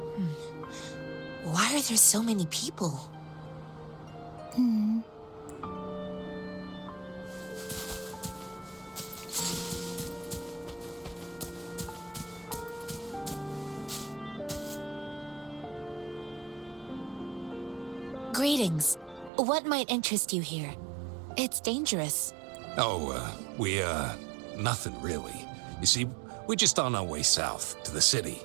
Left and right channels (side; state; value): left; drops out; at 19.3 s